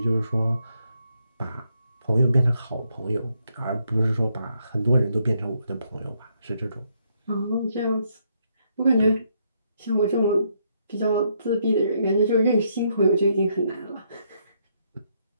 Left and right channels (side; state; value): both; inverted; correlation -0.75